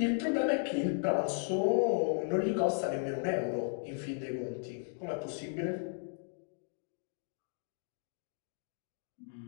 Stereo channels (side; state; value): right; silent; digital silence